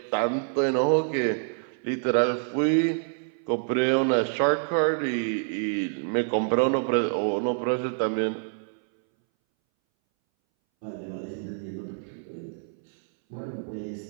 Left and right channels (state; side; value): silent; left; 60 dB below the other